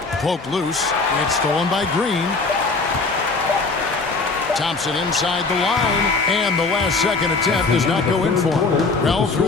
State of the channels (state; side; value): quieter; right; 4.0 dB